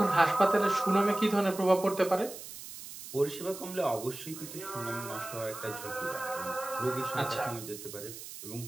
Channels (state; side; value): noise; right; hiss, 12 dB below the sound